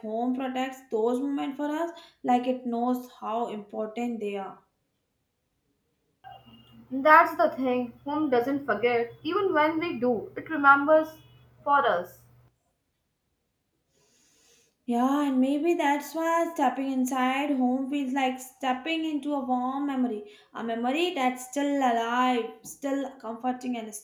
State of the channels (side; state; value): both; identical; correlation 1.00